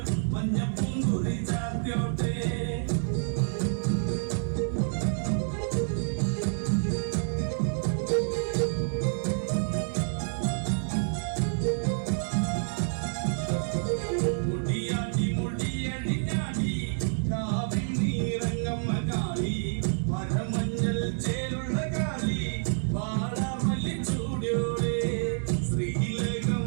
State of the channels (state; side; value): silent; left; 58 dB below the other